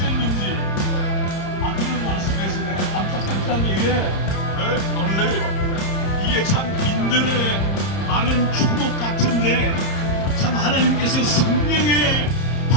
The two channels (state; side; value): late; right; 30 ms